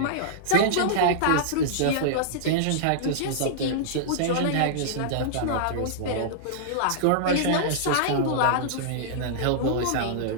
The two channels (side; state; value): both; different; correlation -0.02